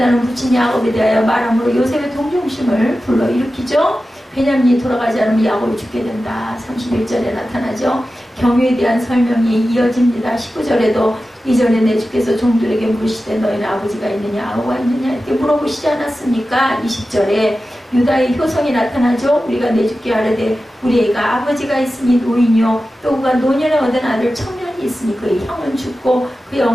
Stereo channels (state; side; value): normal; both; correlation 0.94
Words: 부친 야곱에 대하여 말함으로 요셉의 동정심을 불러일으키죠. 베냐민이 돌아가지 않으면 야곱이 죽게 된다. 31절에 나타나죠. 경유에 대한 설명이 이어집니다. 19절에도 이전에 내 주께서 종들에게 물으시되 너희는 아버지가 있느냐 아우가 있느냐 이렇게 물어보시지 않았습니까? 20절에 유다의 효성이 나타나죠. 우리가 내 주께 아뢰되 우리 애가 아버지가 있으니 노인이요 또 그가 노년에 얻은 아들 청년이 있으니 그의 형은 죽고 그의